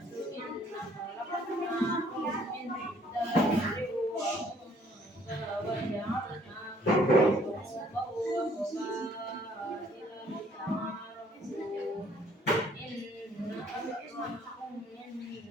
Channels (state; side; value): normal; both; correlation 0.61